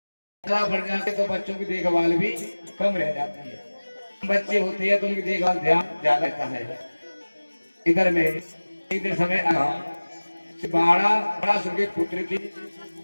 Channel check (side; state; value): both; inverted; correlation -1.00